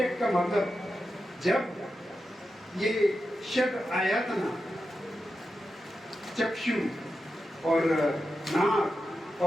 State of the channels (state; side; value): normal; both; correlation 0.90